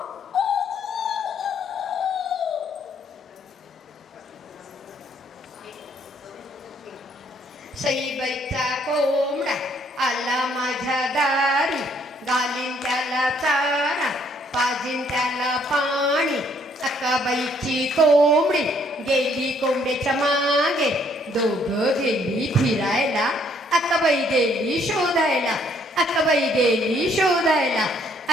सईबाईचा कोंबडा आला माझ्या दारी, घालीन त्याला चारा पाजीन त्याला पाणी. अक्काबाईची कोंबडी गेली कोंबड्याच्या मागे, दोघं गेली फिरायला, अक्काबाई गेली शोधायला, अक्काबाई गेली शोधायला,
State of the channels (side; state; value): both; normal; correlation 0.66